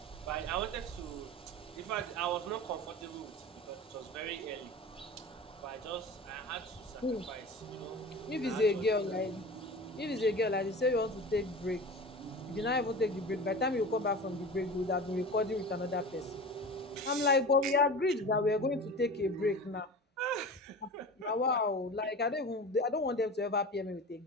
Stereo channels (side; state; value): both; normal; correlation 0.33